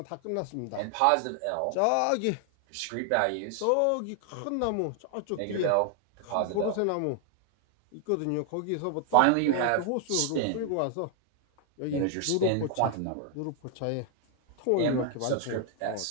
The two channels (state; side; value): different; both; correlation 0.00